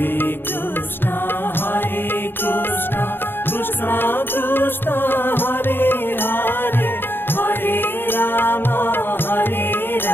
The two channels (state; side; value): late; right; 0.099 ms